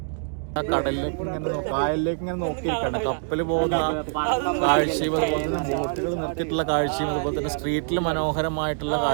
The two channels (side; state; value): left; silent; digital silence